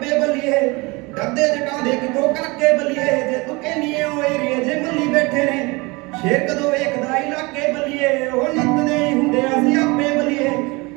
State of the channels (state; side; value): quieter; left; 25.5 dB